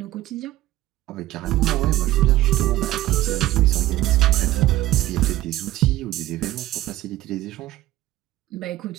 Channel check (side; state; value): left; quieter; 15.9 dB